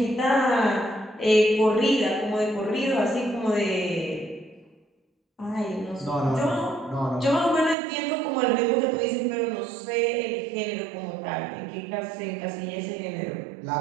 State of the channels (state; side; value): drops out; left; at 7.8 s